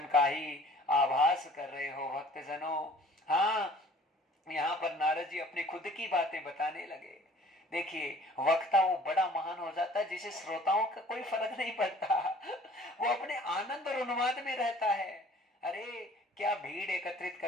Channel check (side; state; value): both; normal; correlation 0.52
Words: का ही आभास कर रहे हो भक्तजनों। हाँ, यहाँ पर नारद जी अपनी खुद की बातें बताने लगे। देखिए, वक्ता वो बड़ा महान हो जाता है जिसे श्रोताओं का कोई फर्क नहीं पड़ता। वो अपने आनंद और उन्माद में रहता है। अरे, क्या भीड़ एकत्रित